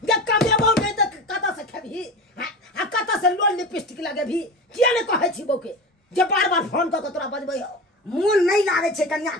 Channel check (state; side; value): normal; both; correlation 0.28